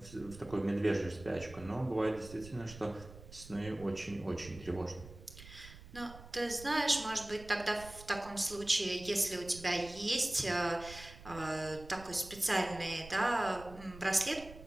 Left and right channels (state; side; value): noise; right; rumble, 16 dB below the sound